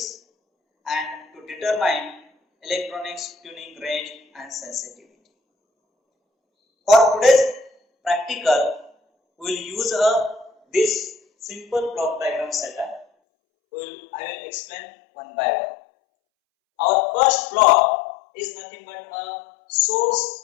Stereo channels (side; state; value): right; drops out; at 13.1 s